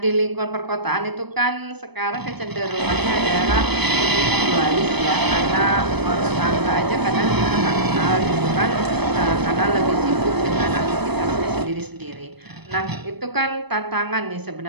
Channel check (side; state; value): left; late; 0.99 ms